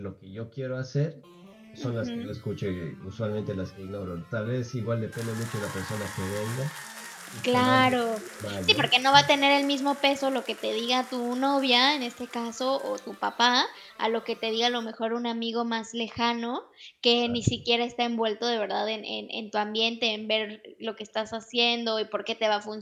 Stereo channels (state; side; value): identical; both; correlation 1.00